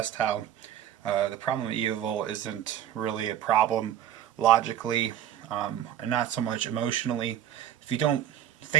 how the problem of evil isn't really a problem logically and not so much emotionally. If you don't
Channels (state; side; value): quieter; left; 10.8 dB